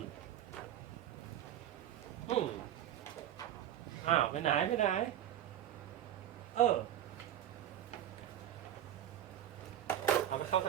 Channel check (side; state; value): left; quieter; 11.4 dB